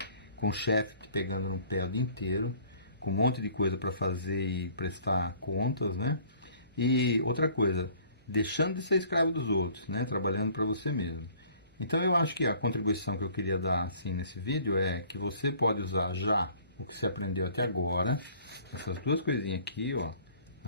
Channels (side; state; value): both; inverted; correlation -0.54